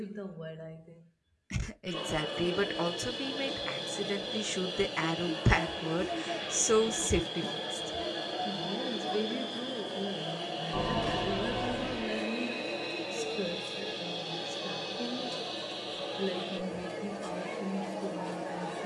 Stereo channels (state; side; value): identical; both; correlation 1.00